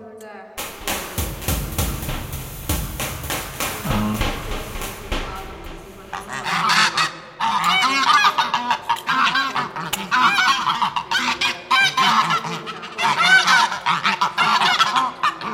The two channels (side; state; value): both; identical; correlation 1.00